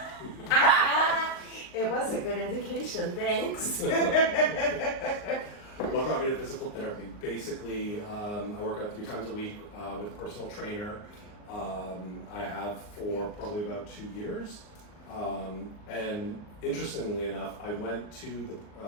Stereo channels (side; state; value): right; late; 39 ms